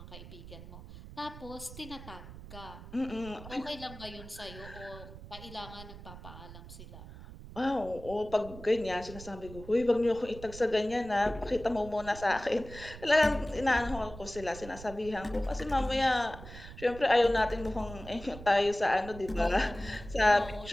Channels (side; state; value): right; noise; rumble, 14 dB below the sound